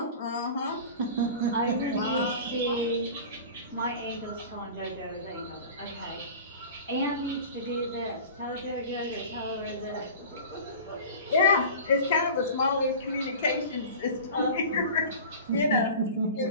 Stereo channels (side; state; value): both; inverted; correlation -0.37